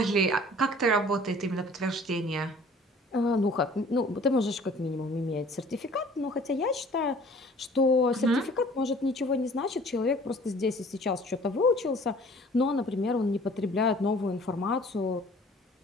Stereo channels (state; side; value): normal; both; correlation 0.51